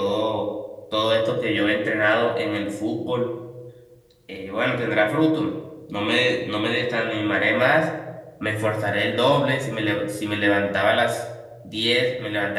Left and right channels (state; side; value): identical; both; correlation 1.00